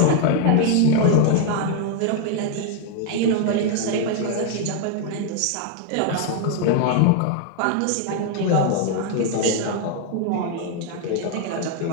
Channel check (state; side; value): different; both; correlation 0.00